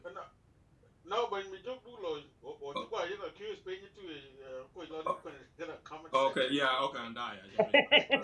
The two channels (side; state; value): both; identical; correlation 1.00